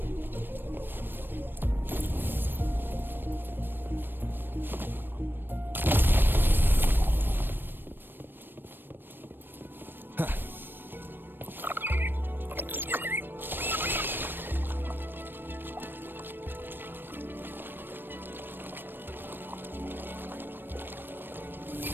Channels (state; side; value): late; left; 0.095 ms